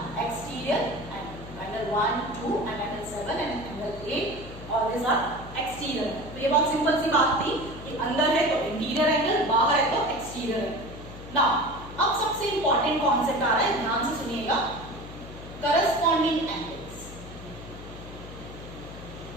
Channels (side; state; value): left; noise; hum, 14 dB below the sound